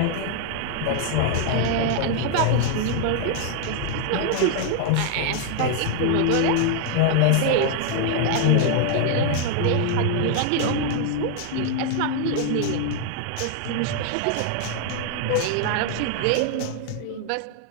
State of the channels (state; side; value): different; both; correlation 0.00